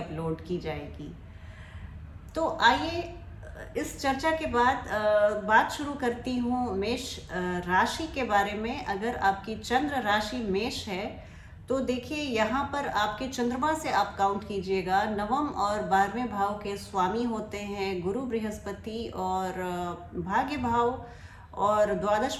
की जाएगी। तो आइए इस चर्चा के बाद बात शुरू करती हूँ मेष राशि के बारे में। अगर आपकी चंद्र राशि मेष है तो देखिए, यहाँ पर आपके चंद्रमा से आप काउंट कीजिएगा, नवम और 12वें भाव के स्वामी होते हैं गुरु बृहस्पति, और भाग्य भाव और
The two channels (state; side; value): identical; both; correlation 1.00